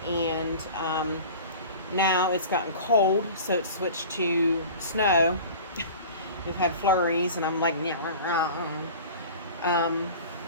And now it's gotten cold, so it's switched to snow. We've had flurries, and I'm like, and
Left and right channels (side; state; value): both; inverted; correlation -0.40